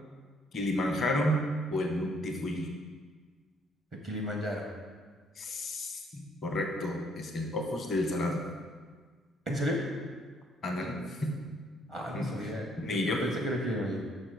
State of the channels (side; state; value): both; normal; correlation 0.66